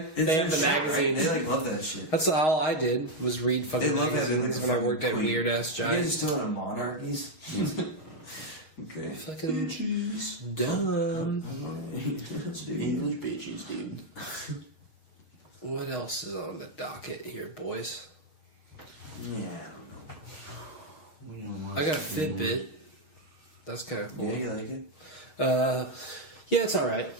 They have the magazines. They like love that shit. That's all I did was read fucking They love that. magazines when I worked at weird ass You guys Giant. still in a monarchies? Okay. Fucking dumb. English bitches, dude. What else is on the docket here, boys? Yeah. I got a Fitbit. That's kind of cool. Yeah, you like it? Yeah, it's all right.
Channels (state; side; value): late; right; 6.4 ms